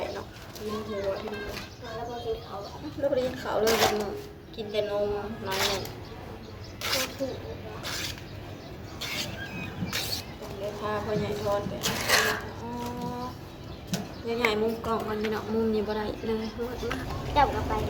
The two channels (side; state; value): both; identical; correlation 1.00